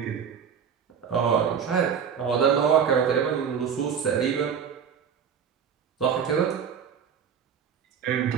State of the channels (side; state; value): left; quieter; 7.4 dB